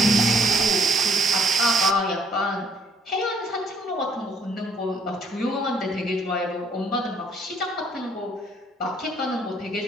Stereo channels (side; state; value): both; normal; correlation 0.63